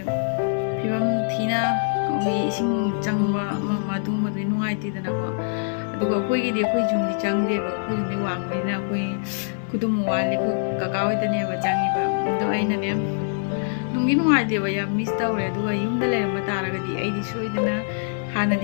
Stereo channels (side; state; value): right; silent; 57 dB below the other